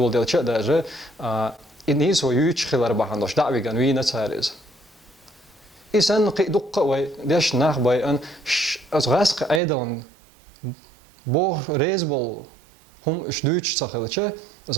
ديال شيء درجة الناس ويوش خلال بحندوش دعوي جنوي نتسارز إنسان قيدق وي ديش ناخ باي أن أزغاسق أيضا بو ريزبل هم إش دوتش تخلتش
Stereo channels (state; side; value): drops out; left; at 9.6 s